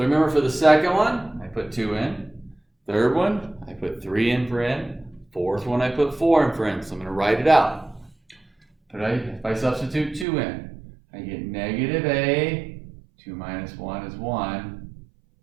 remember, for the second one, I put 2 in. Third one, I put 3 in for n. Fourth one, I put 4 in for n. So I'm going to write it out. But if I substitute 2 in, I get negative a, 2 minus 1 is 1,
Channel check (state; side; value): drops out; left; at 10.2 s